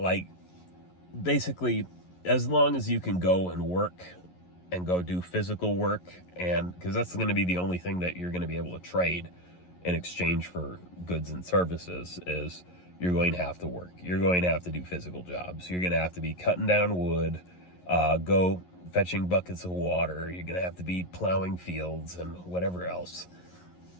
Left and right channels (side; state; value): right; late; 11 ms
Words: basically, as long as you can go and work and go do physical work, and because that's going to be the only thing that you're going to be able to trade in exchange for goods and services, is you're going to have to work. You're going to have to do physical jobs. You're going to have to be cutting down wood, go fetching buckets of water. You're going to have to be plowing fields and whatever else.